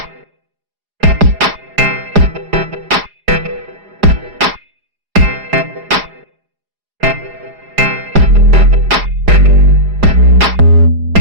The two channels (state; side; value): late; left; 4.9 ms